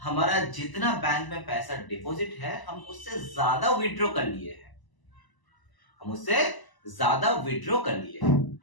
हमारा जितना बैंक में पैसा डिपॉजिट है हम उससे ज्यादा विड्रॉ कर लिए हैं, हम उससे ज्यादा विड्रॉ कर लिए,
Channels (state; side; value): late; right; 1.0 ms